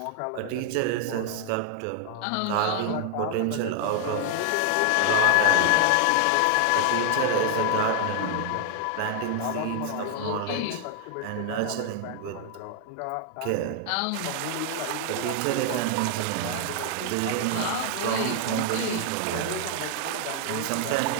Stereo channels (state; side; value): different; both; correlation 0.00